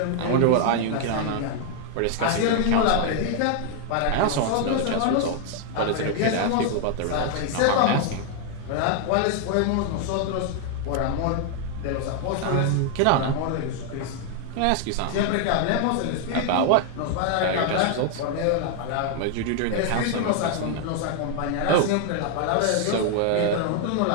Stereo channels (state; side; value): different; both; correlation 0.00